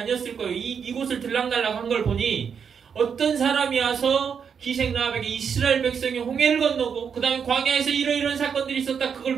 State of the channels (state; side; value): quieter; left; 6.9 dB